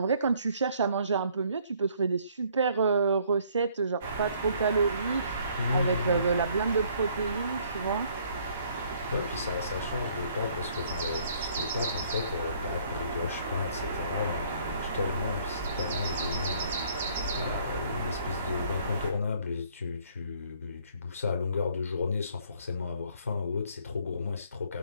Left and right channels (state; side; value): inverted; both; correlation -0.62